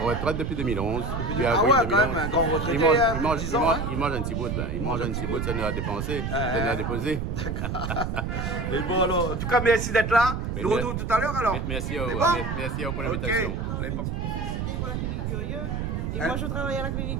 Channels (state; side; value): noise; right; rumble, 2 dB below the sound